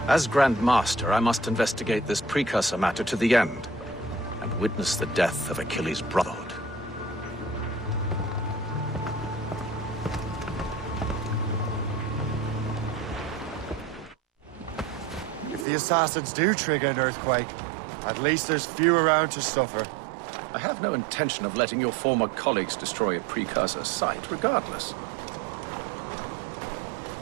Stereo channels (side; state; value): left; drops out; at 15.7 s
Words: As Grandmaster, I must investigate this precursor matter to the end, and witness the death of Achilles' brotherhood. If the assassins do trigger an earthquake, at least there's few around to suffer. I have no intention of letting your former colleagues destroy a precursor site, regardless.